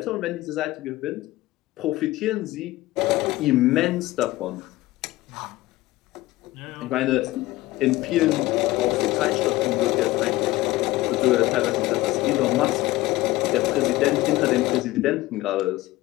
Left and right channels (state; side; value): quieter; right; 17.9 dB